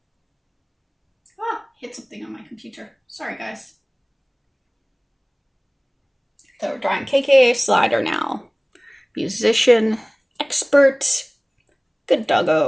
Ah, hit something on my computer. Sorry, guys. So we're drawing KK Slider now. Musician, expert, good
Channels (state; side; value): identical; both; correlation 1.00